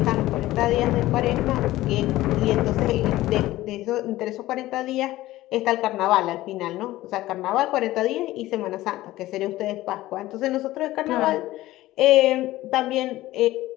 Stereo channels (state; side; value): quieter; right; 16.5 dB